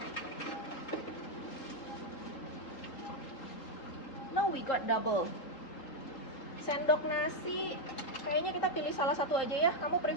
Now we got double. Sendok nasi, kayaknya kita pilih salah satu aja ya. Kamu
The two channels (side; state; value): right; late; 3.8 ms